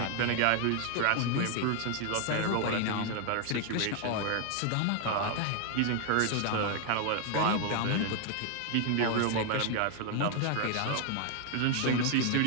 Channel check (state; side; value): different; both; correlation 0.00